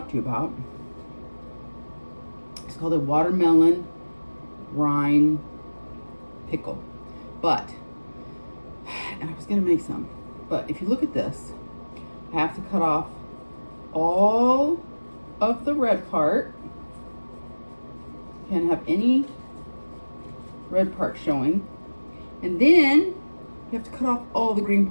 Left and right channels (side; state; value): both; inverted; correlation -1.00